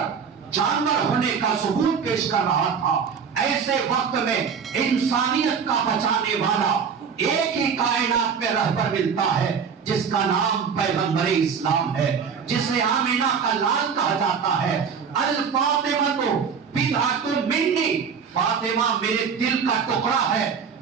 جانور ہونے کا ثبوت پیش کر رہا تھا، ایسے وقت میں انسانیت کا بچانے والا ایک ہی کائنات میں رہبر ملتا ہے جس کا نام پیغمبر اسلام ہے، جسے آمینہ کا لال کہا جاتا ہے۔ الفاطمہ بضعۃ منی، فاطمہ میرے دل کا ٹکڑا ہے۔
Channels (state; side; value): quieter; left; 6.5 dB